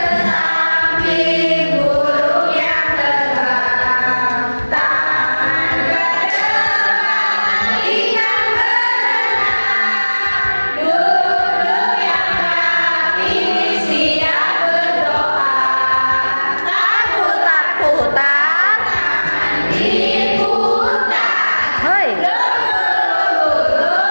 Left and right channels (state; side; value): inverted; both; correlation -1.00